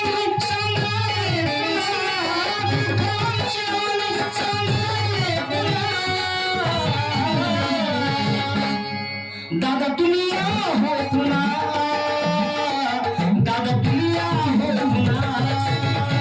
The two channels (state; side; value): identical; both; correlation 1.00